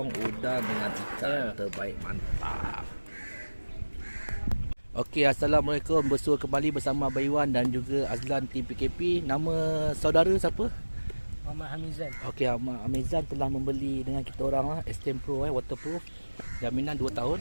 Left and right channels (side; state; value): both; inverted; correlation -1.00